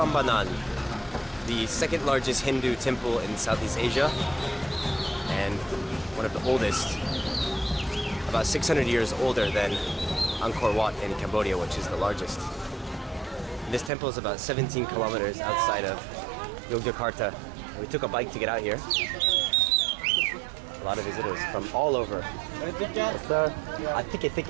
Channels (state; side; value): drops out; left; at 13.9 s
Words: the second largest Hindu temple in Southeast Asia and one of the oldest, about 600 years older than Angkor Wat in Cambodia, which is the largest. This temple is about 17 kilometers outside of Yogyakarta. And we took a bike to get out here. A lot of visitors from all over. Yes, sir. A